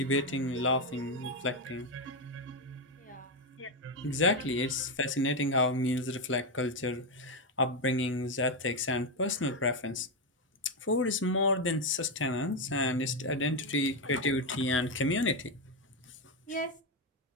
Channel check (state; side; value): normal; both; correlation 0.07